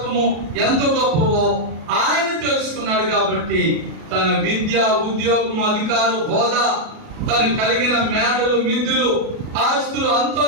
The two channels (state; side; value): late; left; 37 ms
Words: ఎంత గొప్పవో ఆయన తెలుసుకున్నాడు. కాబట్టి తన విద్య, ఉద్యోగం, అధికారం, హోదా, తను కలిగిన మేడలు, మిద్దులు, ఆస్తులు,